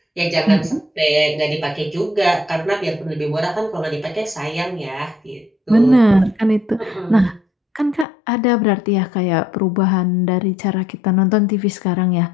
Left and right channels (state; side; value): drops out; right; at 8.1 s